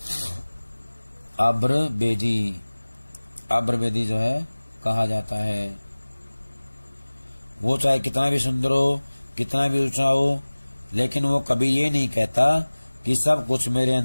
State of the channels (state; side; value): inverted; both; correlation -1.00